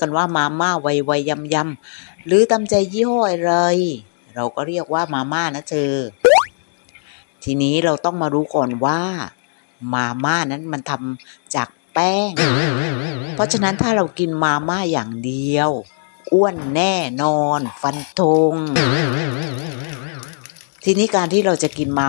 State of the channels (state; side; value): silent; right; digital silence